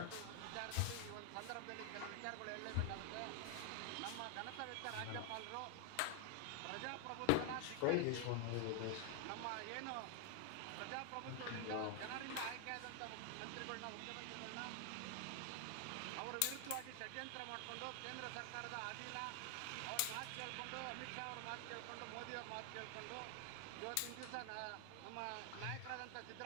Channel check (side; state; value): both; different; correlation 0.00